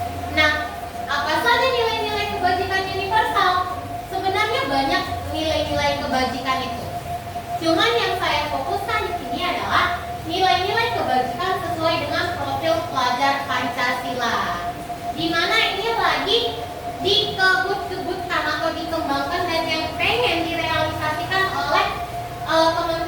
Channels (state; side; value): identical; both; correlation 1.00